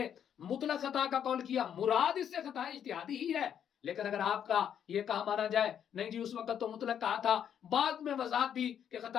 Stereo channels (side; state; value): right; quieter; 8.9 dB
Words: مطلق خطا کا قول کیا، مراد اس سے خطا اجتہادی ہی ہے۔ لیکن اگر آپ کا یہ کہا مانا جائے نہیں جی اس وقت تو مطلق کہا تھا، بعد میں وضاحت دی کہ